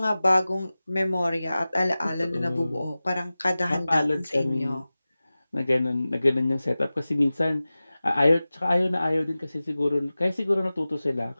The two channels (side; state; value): both; inverted; correlation -0.97